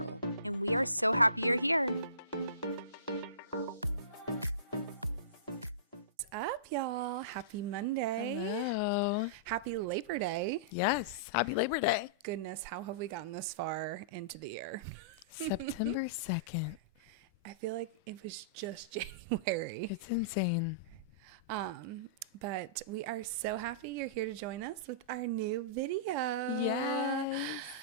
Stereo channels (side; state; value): both; inverted; correlation -0.30